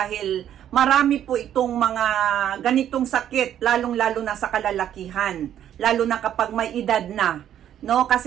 marami po itong mga ganitong sakit, lalong-lalo na sa kalalakihan. Lalo na kapag may edad na. No?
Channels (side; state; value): left; quieter; 10.6 dB